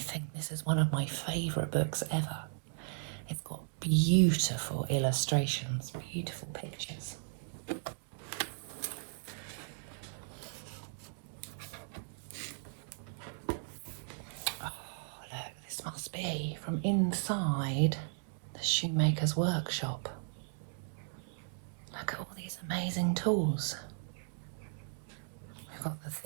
think this is one of my favourite books ever. It's got beautiful illustrations, beautiful pictures. Oh, look, this must be from inside the shoemaker's workshop. Look at all these amazing tools. We've got the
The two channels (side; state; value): left; silent; digital silence